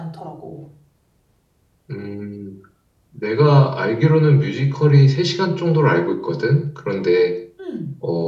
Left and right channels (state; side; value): identical; both; correlation 1.00